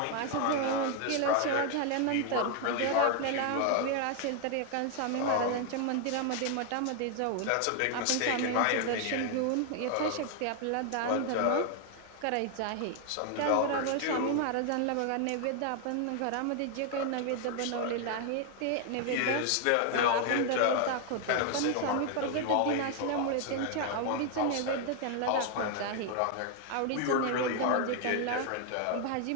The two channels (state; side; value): different; both; correlation 0.00